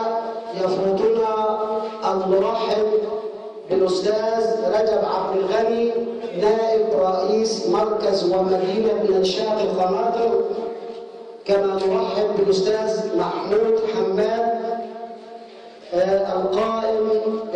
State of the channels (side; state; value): both; identical; correlation 1.00